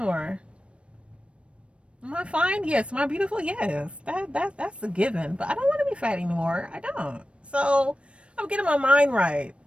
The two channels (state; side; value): late; left; 0.060 ms